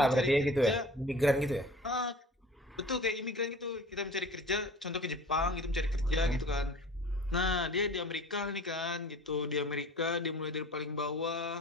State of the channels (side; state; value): both; normal; correlation 0.43